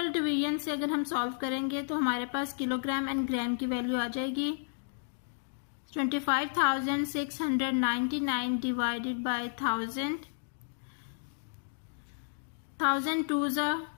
division से अगर हम solve करेंगे तो हमारे पास kilogram and ग्राम की value आ जाएगी. 25,699 divided by 1000. 1000 twos are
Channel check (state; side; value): silent; right; digital silence